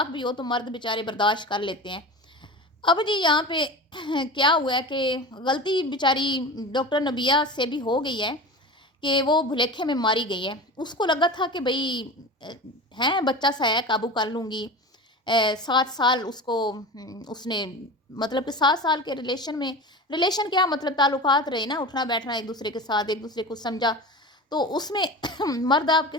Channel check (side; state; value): both; normal; correlation 0.31